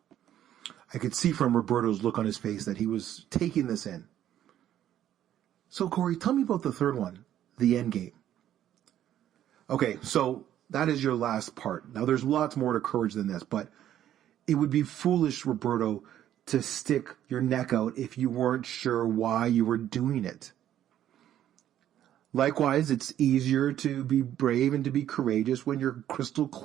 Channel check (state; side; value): quieter; left; 11.4 dB